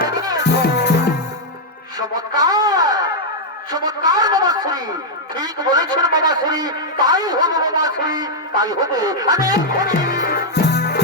চমৎকার চমৎকার মামাশ্রী, ঠিক বলেছেন মামাশ্রী, তাই হবে মামাশ্রী, তাই হবে। আমি এক্ষুনি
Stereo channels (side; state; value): both; normal; correlation -0.02